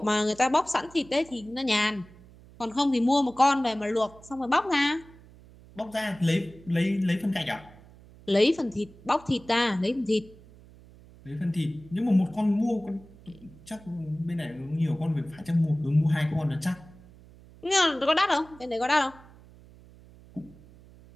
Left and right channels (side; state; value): right; noise; hum, 23 dB below the sound